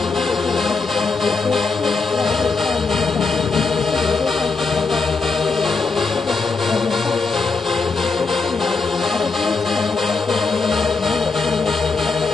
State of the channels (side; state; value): right; quieter; 4.3 dB